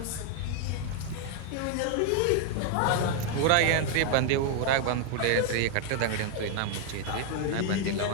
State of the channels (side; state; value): both; different; correlation 0.00